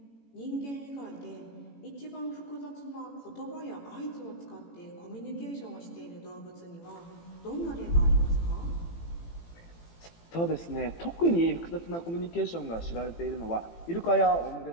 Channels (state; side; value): late; right; 18 ms